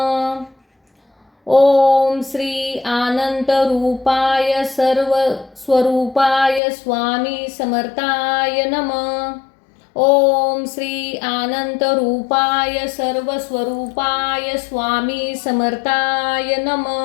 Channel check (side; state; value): right; drops out; at 6.6 s